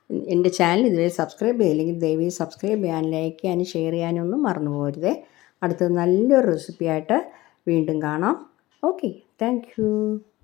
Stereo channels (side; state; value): right; quieter; 18.2 dB